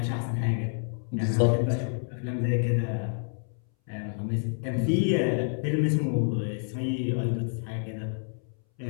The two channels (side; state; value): right; silent; 59 dB below the other